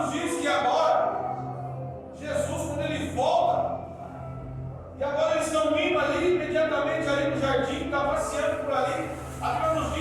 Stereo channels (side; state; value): both; identical; correlation 1.00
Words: diz que agora, Jesus, quando ele volta, e agora eles estão indo ali, imediatamente ali no jardim, está passeando por ali. A Bíblia nos